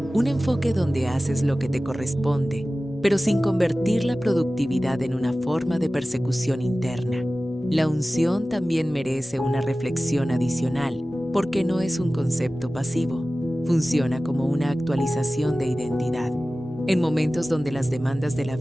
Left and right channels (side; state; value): both; normal; correlation 0.96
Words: un enfoque donde haces lo que te corresponde, pero sin convertir la productividad en una forma de persecución interna. La unción también merece una reflexión adicional, porque no es un concepto pasivo. Funciona como una actualización de identidad. En momentos donde las demandas de la